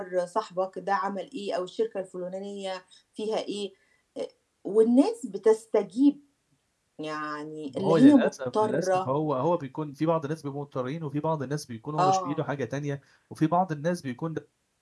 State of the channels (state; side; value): identical; both; correlation 1.00